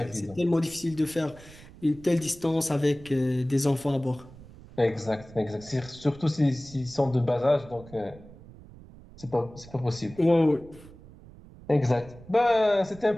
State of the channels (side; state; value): right; noise; rumble, 20 dB below the sound